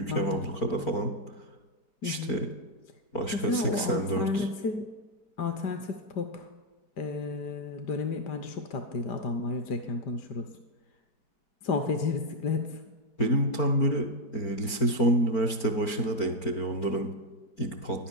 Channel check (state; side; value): late; right; 4.4 ms